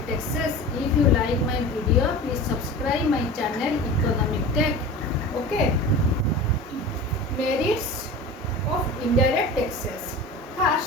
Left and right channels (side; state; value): both; normal; correlation 0.34